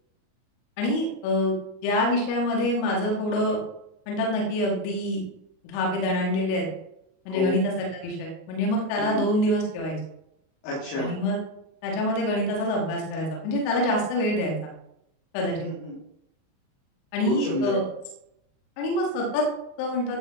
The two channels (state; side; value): late; right; 38 ms